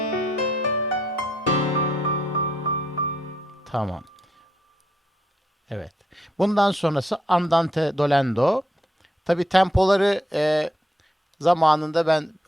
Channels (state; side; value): normal; both; correlation 0.76